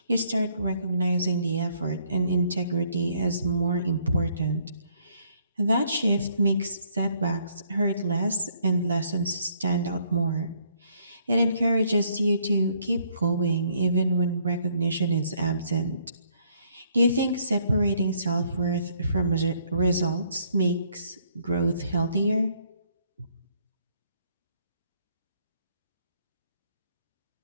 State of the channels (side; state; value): both; inverted; correlation -0.67